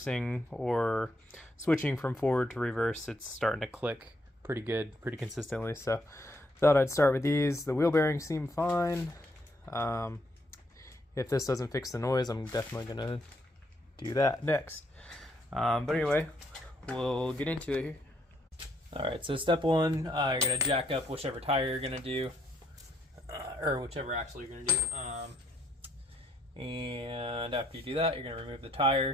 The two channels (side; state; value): both; normal; correlation 0.73